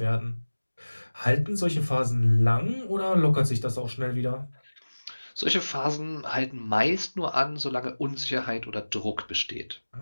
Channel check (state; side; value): inverted; both; correlation -1.00